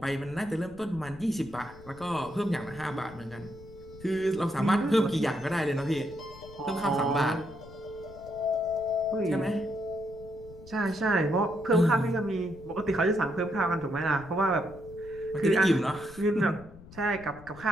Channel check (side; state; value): left; noise; rumble, 19 dB below the sound